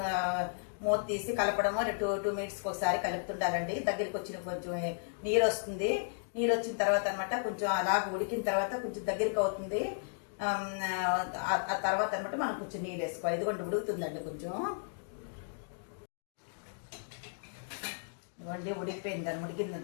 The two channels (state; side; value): silent; right; digital silence